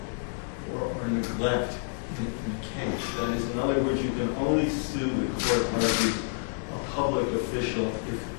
neglect in the case. That is, in other words, you can only sue, the court argues, a public official if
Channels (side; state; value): right; silent; 59 dB below the other